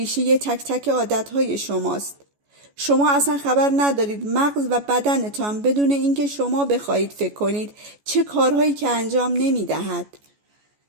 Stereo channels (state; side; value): late; left; 14 ms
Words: تک تک عادت‌های شماست. شما اصلا خبر ندارید مغز و بدنتان بدون اینکه شما بخواهید فکر کنید چه کارهایی که انجام نمی‌دهد.